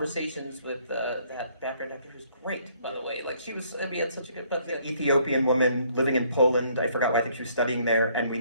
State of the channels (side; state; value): both; inverted; correlation -0.65